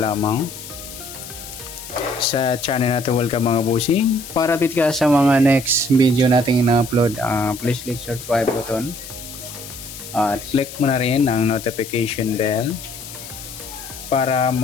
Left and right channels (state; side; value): noise; left; hiss, 13 dB below the sound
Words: sa channel natin. Welcome mga busing. Para update ka sa mga next video nating ina-upload, please click subscribe button at click mo na rin ang notification bell para